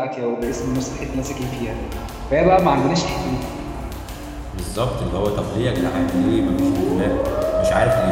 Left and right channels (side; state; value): both; identical; correlation 1.00